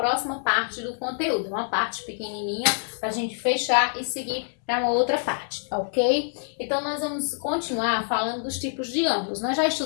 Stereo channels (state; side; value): silent; right; digital silence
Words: parte do conteúdo, uma parte pequenininha para a gente fechar e seguir para uma outra parte, ok? Então, nós vamos continuar falando dos tipos de ângulos. Nós já